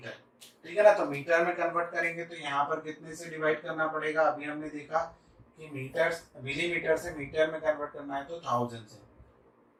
ठीक है ना। तो मीटर में कन्वर्ट करेंगे तो यहाँ पर कितने से डिवाइड करना पड़ेगा। अभी हमने देखा कि मीटर, मिलीमीटर से मीटर में कन्वर्ट करना है तो 1000 से।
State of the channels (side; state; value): both; identical; correlation 1.00